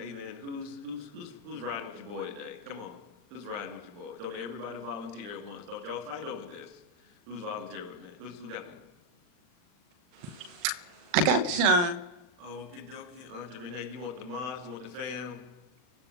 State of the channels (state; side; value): late; left; 40 ms